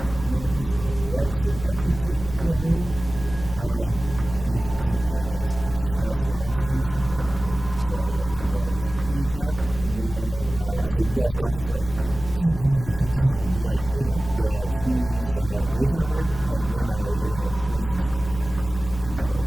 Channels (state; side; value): noise; left; hum, 12 dB below the sound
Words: in there. Plus the. Do I just look at that 15 that we had earlier? Dave is not. Yeah, that's That's Gonski's? Okay, cool. So I get that 25 HP temp, and then, so you guys watch as like, the genie's mage armor, and then it freezes. It kind of